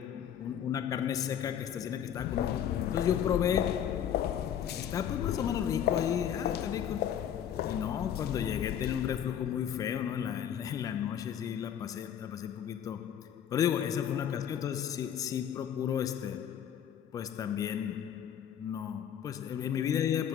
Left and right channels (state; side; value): quieter; right; 9.4 dB